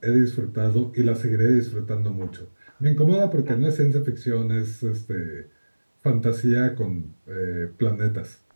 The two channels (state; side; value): inverted; both; correlation -1.00